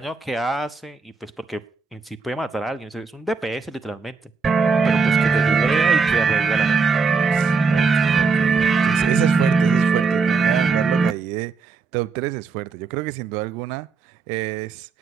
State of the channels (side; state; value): left; quieter; 4.8 dB